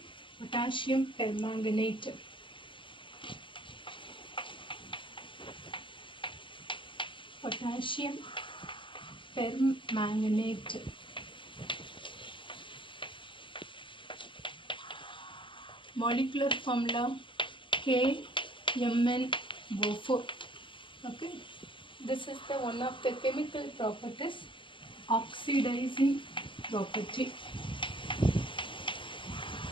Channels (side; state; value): right; late; 0.24 ms